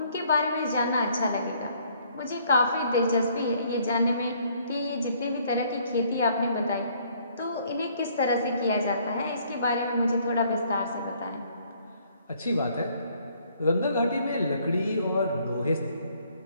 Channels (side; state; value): both; inverted; correlation -0.63